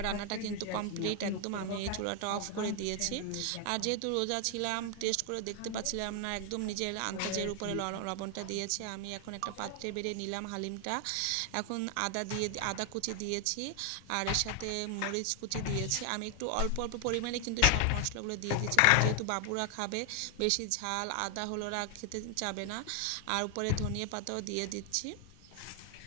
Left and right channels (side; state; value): both; different; correlation 0.00